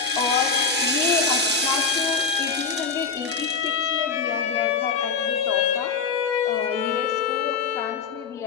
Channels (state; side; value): quieter; right; 5.0 dB